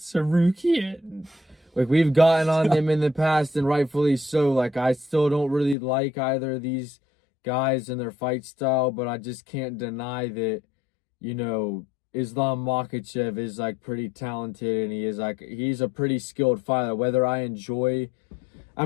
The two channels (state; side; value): drops out; right; at 5.8 s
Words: Like, we've gotten on them in the past, and rightfully so. Like, I still don't really like either of these guys and their fight style, but I just can't deny that, Islam Makhachev is, like, pretty talented, and he's a pretty skilled fighter. Whether I enjoy... I